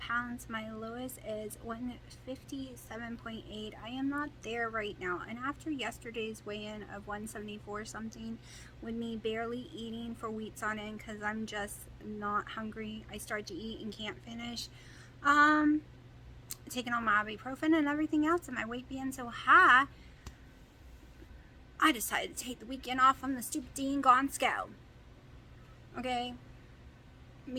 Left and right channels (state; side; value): identical; both; correlation 1.00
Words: My lowest is 157.8. I am not there right now. And after yesterday's weigh-in of 174 something, with me barely eating for weeks on end because I'm just not hungry, I start to eat and can't finish. Taking on my ibuprofen and everything else, and my weight being so high, I decided to take the weekend off on the stupid dang gone scale. Okay?